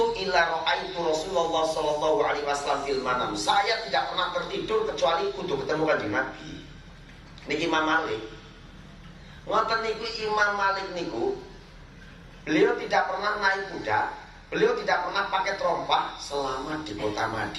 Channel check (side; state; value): both; identical; correlation 1.00